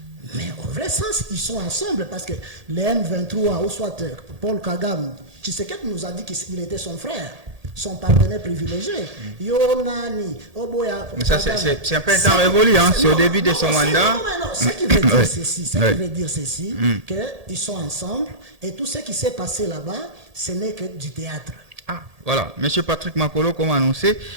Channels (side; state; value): left; late; 1.8 ms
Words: Mais au vrai sens, ils sont ensemble parce que les M23, ou soit Paul Kagame, Tshisekedi nous a dit qu'il était son frère, son partenaire privilégié. Yonani, Oboya. Mais ça, c'est un peu un temps révolu, hein? C'est au début de son mandat. Non, ce qui veut dire ceci, qu'ils sont ensemble et tout ce qui s'est passé là-bas, ce n'est que du théâtre. Ah, voilà. Monsieur Patrick Makolo, comme annoncé,